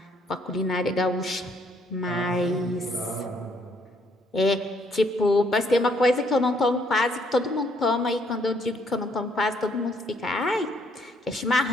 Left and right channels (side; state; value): both; normal; correlation 0.68